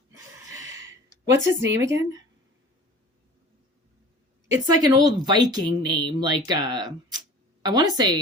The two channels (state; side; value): normal; both; correlation 0.42